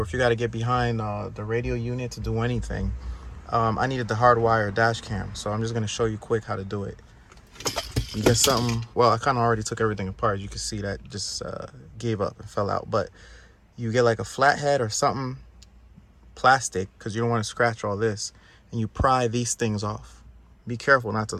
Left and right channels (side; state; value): both; identical; correlation 1.00